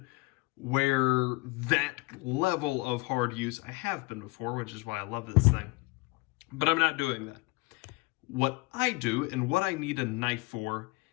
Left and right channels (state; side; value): quieter; right; 25.1 dB